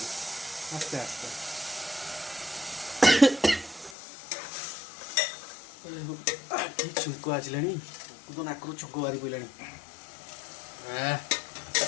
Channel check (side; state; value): right; drops out; at 4.0 s